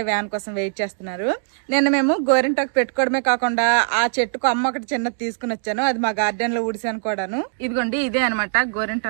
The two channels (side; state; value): left; silent; digital silence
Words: వ్యాన్ కోసం వెయిట్ చేస్తున్నారు. నిన్న మేము గోరింటాకు పెట్టుకోవడమే కాకుండా ఆ చెట్టుకు అమ్మ ఒకటి చిన్నది తీసుకుని వచ్చాను. అది మా గార్డెన్ లో ఉడిసాను కూడాను. ఇదిగోండి ఇదే అనమాట